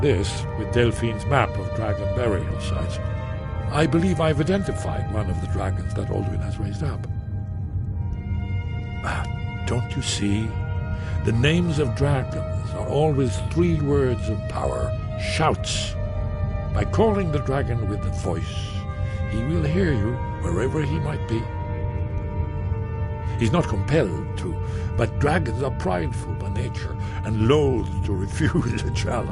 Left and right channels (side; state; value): both; identical; correlation 1.00